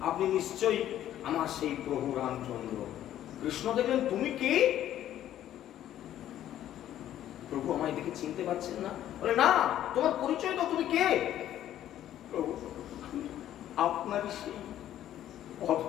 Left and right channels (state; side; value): quieter; right; 12.0 dB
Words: আপনি নিশ্চয়ই আমার সেই প্রভু রামচন্দ্র। কৃষ্ণ দেখলেন তুমি কে? প্রভু আমায় দেখে চিনতে পারছেন না? বলে না, তোমার পরিচয় দাও, তুমি কে? প্রভু আপনারই সেই